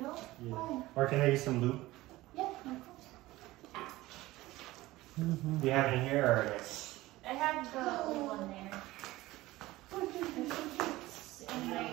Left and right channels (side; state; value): left; quieter; 18.1 dB